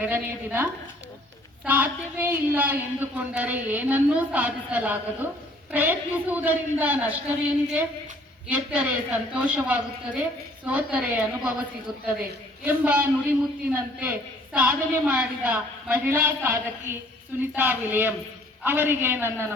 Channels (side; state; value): both; normal; correlation 0.58